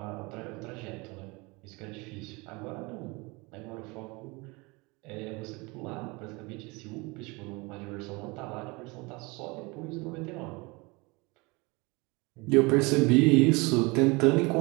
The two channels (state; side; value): quieter; left; 26.1 dB